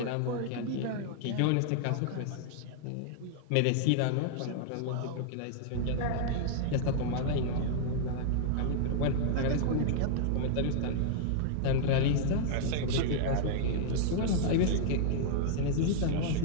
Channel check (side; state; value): both; different; correlation -0.01